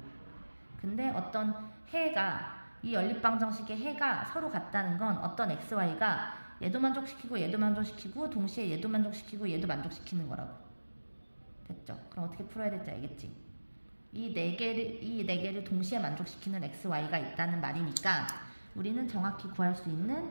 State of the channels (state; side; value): inverted; both; correlation -1.00